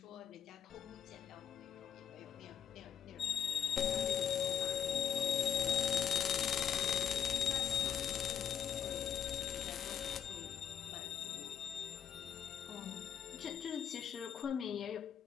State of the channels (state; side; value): quieter; right; 8.5 dB